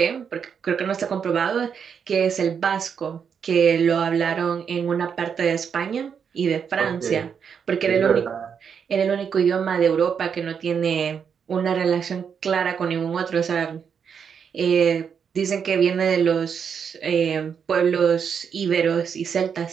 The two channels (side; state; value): left; quieter; 7.0 dB